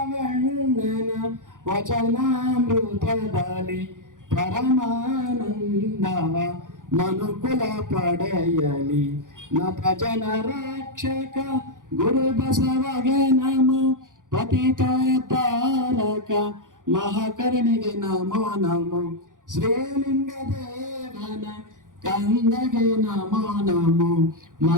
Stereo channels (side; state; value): left; late; 0.88 ms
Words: ವಚನಾಮೃತದಲ್ಲಿ ಪರಮಾನಂದವ ಮನುಕುಲ ಪಡೆಯಲಿ ನತ ಜನ ರಕ್ಷಕ ಗುರು ಬಸವಗೆ ನಮೋ ಪತಿತ ತಾರಕ ಮಹಾಕರುಣಿಗೆ ನಮೋ ನಮೋ ಶ್ರೀಲಿಂಗ ದೇವನ ಕಂದಗೆ ನಮೋ ನಮೋ